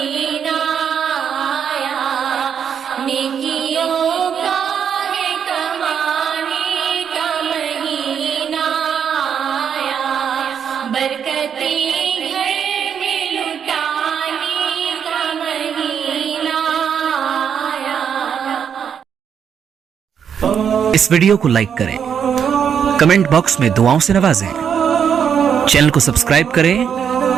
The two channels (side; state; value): left; quieter; 7.8 dB